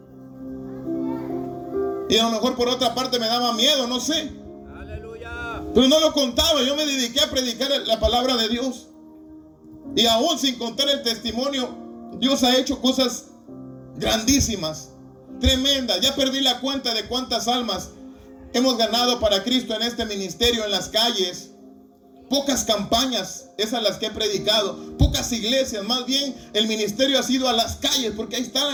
Y a lo mejor por otra parte me daba miedo, no sé. Aleluya. Pero no lo contaba. Yo me dediqué a predicar la palabra de Dios. Y aún sin contar el testimonio, Dios ha hecho cosas grandísimas, tremendas. Ya perdí la cuenta de cuántas almas hemos ganado para Cristo en este ministerio, en las calles. Pocas campañas, esas las que he predicado. Pocas iglesias, más bien el ministerio ha sido a las calles, porque ahí está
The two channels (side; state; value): both; identical; correlation 1.00